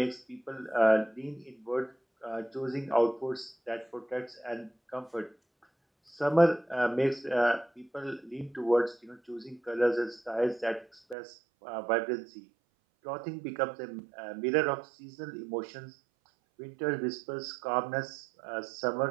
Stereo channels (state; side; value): drops out; left; at 11.2 s